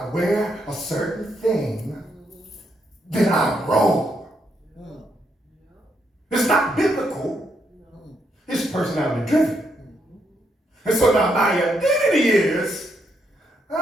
wear a certain thing, then I'm wrong. It's not biblical. It's personality driven. And so now my identity is, if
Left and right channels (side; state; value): both; normal; correlation 0.77